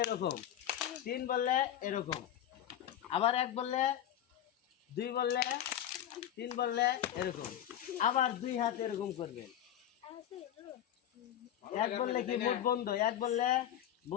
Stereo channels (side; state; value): right; quieter; 11.1 dB